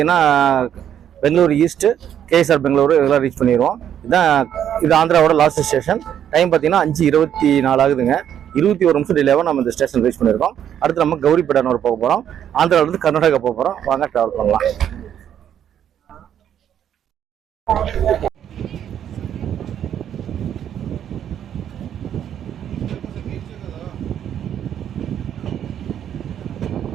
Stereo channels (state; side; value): quieter; left; 9.7 dB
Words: பெங்களூர் ஈஸ்ட்டு, கேஎஸ்ஆர் பெங்களூரு இதெல்லாம் ரீச் பண்ணிடுவோம். இது ஆந்திராவோட லாஸ்ட் ஸ்டேஷன். டைம் பார்த்தீங்கன்னா 5:24 ஆகுதுங்க. 21 நிமிஷம் டிலேவாக நம்ம இந்த ஸ்டேஷன் ரீச் பண்ணியிருக்கோம். அடுத்து நம்ம கௌரிப்பேட்டனூர் போக போகிறோம். ஆந்திராவிலேருந்து கர்நாடகா போக போகிறோம். வாங்க ட்ராவல் பண்ணலாம்.